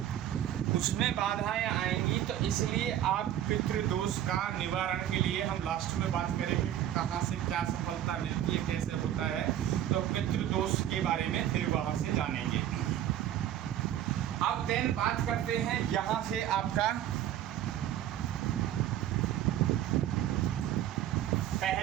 उसमें बाधाएं आएंगी। तो इसलिए आप पितृदोष का निवारण के लिए हम लास्ट में बात करेंगे कहाँ से क्या सफलता मिलती है, कैसे होता है, तो पितृदोष के बारे में फिर वहाँ से जानेंगे। अब देन बात करते हैं यहाँ से आपका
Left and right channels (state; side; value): quieter; left; 11.5 dB